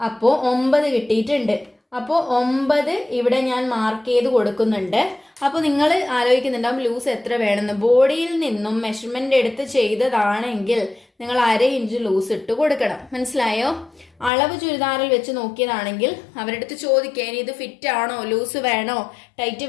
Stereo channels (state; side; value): drops out; right; at 14.3 s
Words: 9 കിട്ടിയിട്ടുണ്ട്. അപ്പോൾ 9 ഇവിടെ ഞാൻ മാർക്ക് ചെയ്ത് കൊടുക്കുന്നുണ്ട്. അപ്പോൾ നിങ്ങൾ ആലോചിക്കുന്നുണ്ടാവും ലൂസ് എത്ര വേണമെന്ന്. ബോഡിയിൽ നിന്നും മെഷർമെന്റ് എടുത്ത് ചെയ്തതാണെങ്കിൽ നിങ്ങൾ 1/2 ഇഞ്ച് ലൂസ് ഇട്ട് കൊടുക്കണം, മനസ്സിലായോ? അളവ് ചുരിദാറിൽ വെച്ച് നോക്കിയതാണെങ്കിൽ അവരുടെ അടുത്ത് ചോദിക്കുക, ഇനി ഇത് ഫിറ്റ് ആണോ, ലൂസ് വേണോ, ടൈറ്റ്